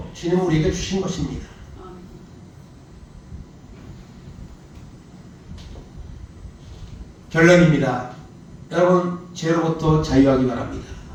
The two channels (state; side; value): identical; both; correlation 1.00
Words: 주님은 우리에게 주신 것입니다. 결론입니다. 여러분 죄로부터 자유하기 바랍니다.